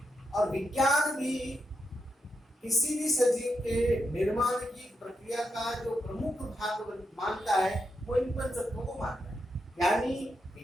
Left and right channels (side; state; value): both; normal; correlation 0.84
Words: और विज्ञान भी किसी भी सजीव के निर्माण की प्रक्रिया का जो प्रमुख भाग मानता है वो इन पंच तत्वों को मानता है। यानी